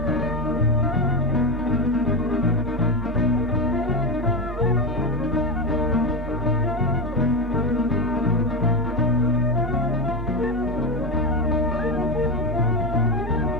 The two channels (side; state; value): both; normal; correlation 0.16